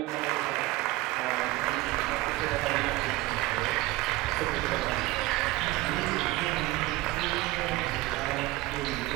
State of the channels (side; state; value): left; quieter; 19.0 dB